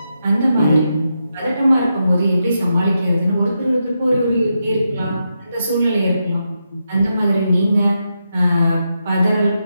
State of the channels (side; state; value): both; inverted; correlation -0.85